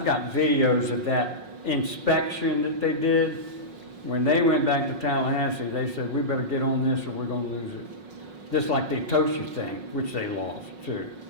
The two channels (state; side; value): late; left; 5.5 ms